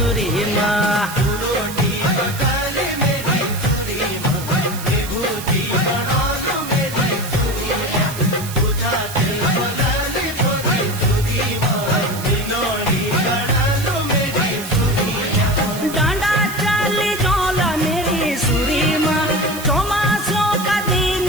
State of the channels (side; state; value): right; noise; hiss, 11 dB below the sound